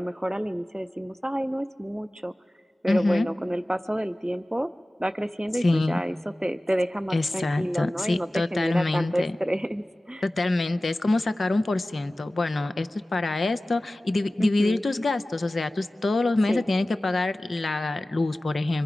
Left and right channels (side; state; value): both; normal; correlation 0.97